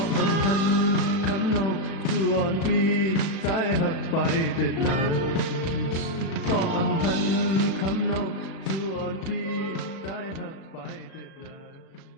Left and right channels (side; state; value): right; late; 36 ms